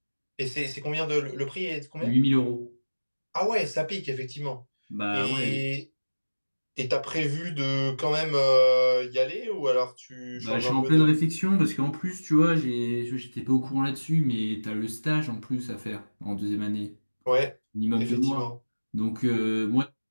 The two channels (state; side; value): inverted; both; correlation -1.00